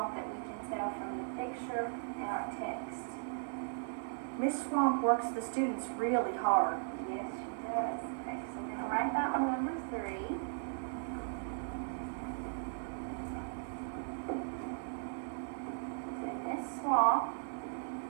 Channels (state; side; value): silent; left; digital silence